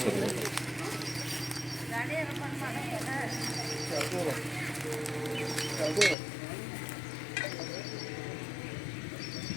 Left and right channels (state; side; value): drops out; right; at 6.2 s